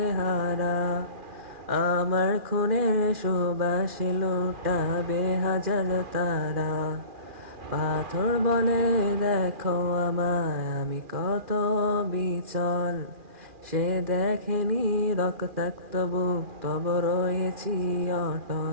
হারা, আমার খুনের সুবাসে লুটাবে হাজার তারা। পাথর বলে দেখো আমায় আমি কত বিচল, সে দেখেনি রক্তাক্ত বুক তব রয়েছি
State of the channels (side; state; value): left; late; 2.4 ms